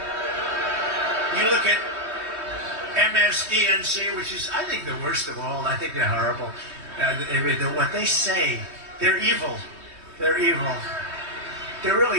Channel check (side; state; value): left; late; 3.2 ms